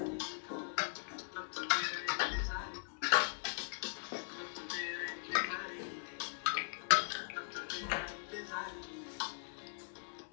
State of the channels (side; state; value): right; silent; digital silence